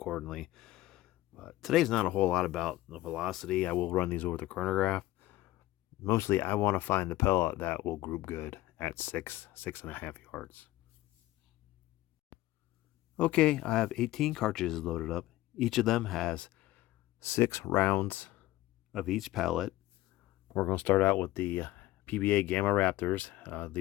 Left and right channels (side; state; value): right; quieter; 16.8 dB